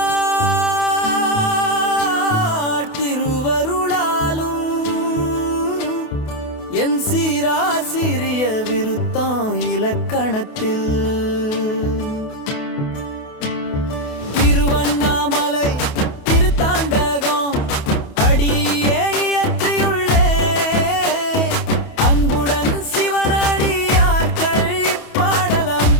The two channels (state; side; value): late; right; 28 ms